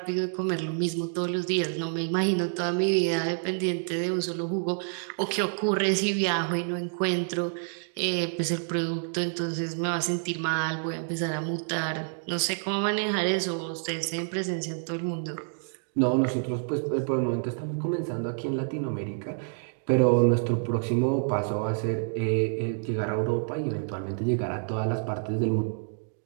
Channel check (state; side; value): silent; left; digital silence